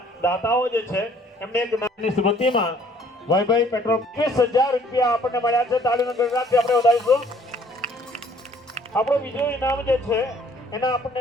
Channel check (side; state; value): both; normal; correlation 0.59